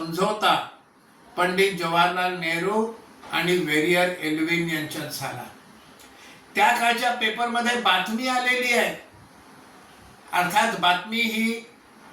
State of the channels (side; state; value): both; identical; correlation 1.00